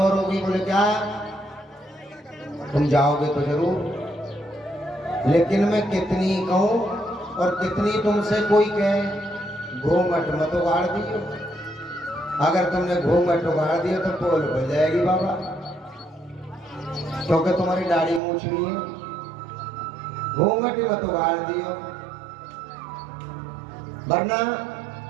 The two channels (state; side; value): drops out; left; at 18.2 s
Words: होगी। बोले क्या? तुम जाओगे तो जरूर, लेकिन मैं कितनी कहूं और कितनी तुमसे कोई कहे घूंघट मत उगाड़ दियो। अगर तुमने घूंघट उगाड़ दिया तो पोल खुल जाएगी बाबा, क्योंकि तुम्हारी दाढ़ी मूछ भी है। घूंघट मत उगाड़ दियो, वरना